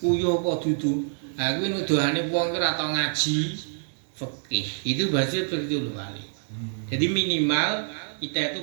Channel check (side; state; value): left; silent; digital silence